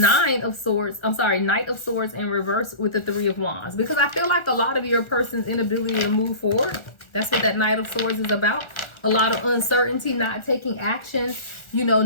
of Swords in reverse with the Three of Wands. Because I feel like a lot of your person's inability to move forward. That's what that Knight of Swords is about. A lot of uncertainty, not taking action,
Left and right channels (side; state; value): right; late; 1.4 ms